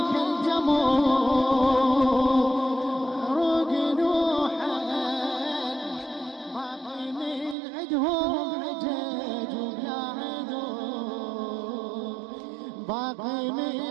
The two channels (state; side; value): drops out; left; at 7.6 s